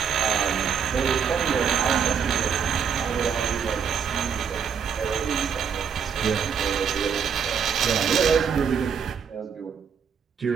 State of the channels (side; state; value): left; quieter; 7.0 dB